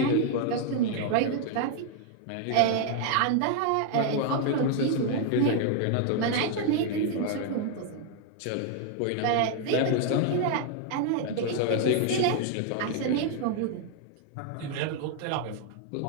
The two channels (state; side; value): different; both; correlation 0.00